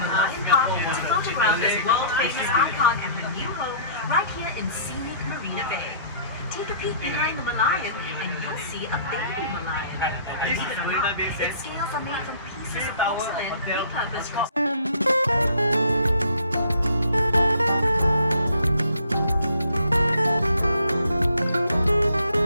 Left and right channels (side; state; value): both; inverted; correlation -0.56